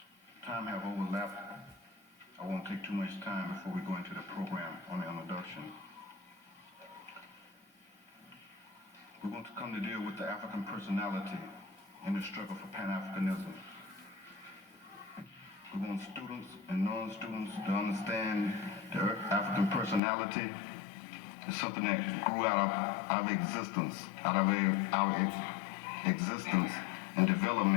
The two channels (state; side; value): drops out; right; at 20.0 s